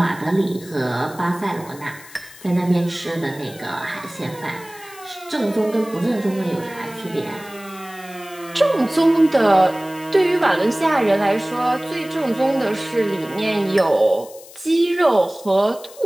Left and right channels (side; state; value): left; noise; hiss, 20 dB below the sound